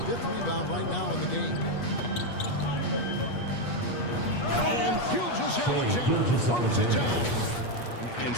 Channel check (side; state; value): right; late; 8.3 ms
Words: rebound right now in the game. And Gilgeous-Alexander throws it down. And